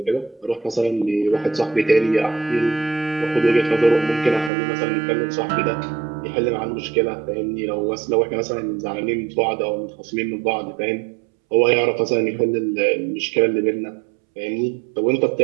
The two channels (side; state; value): left; drops out; at 4.5 s